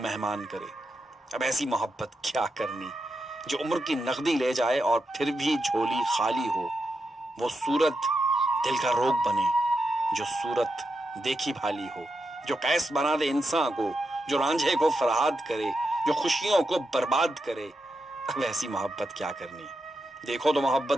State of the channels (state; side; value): normal; both; correlation 0.86